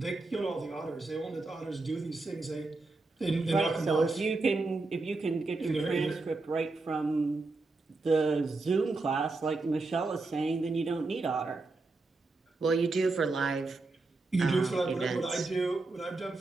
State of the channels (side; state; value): left; quieter; 3.5 dB